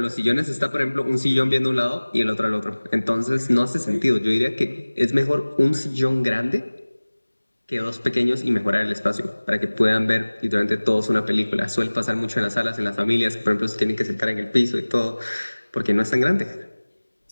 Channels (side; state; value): both; inverted; correlation -1.00